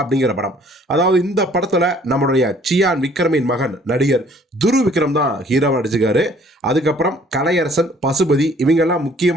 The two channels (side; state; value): both; normal; correlation 0.58